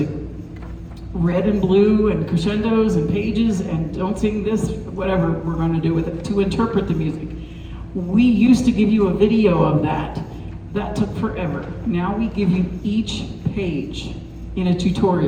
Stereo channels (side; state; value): both; identical; correlation 1.00